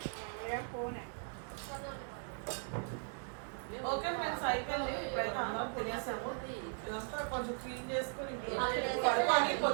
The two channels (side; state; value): left; silent; 52 dB below the other